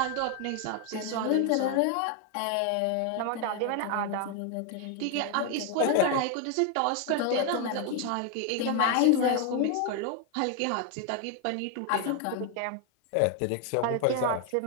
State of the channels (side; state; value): both; different; correlation 0.00